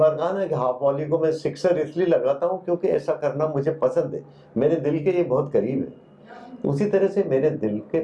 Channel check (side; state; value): both; identical; correlation 1.00